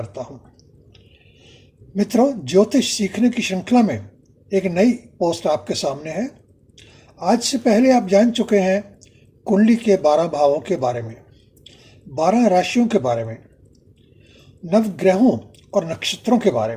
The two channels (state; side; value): identical; both; correlation 1.00